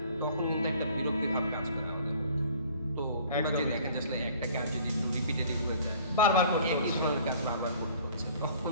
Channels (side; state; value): both; inverted; correlation -0.52